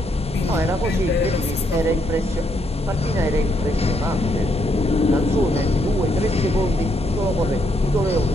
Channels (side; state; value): both; normal; correlation 0.75